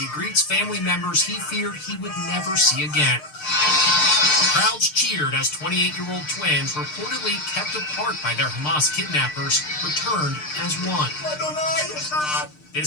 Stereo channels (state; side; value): late; right; 6.6 ms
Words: greets family members he feared he would never see again. Crowds cheered as 28-year-old twins, reportedly kept apart by their Hamas kidnappers, returned as one.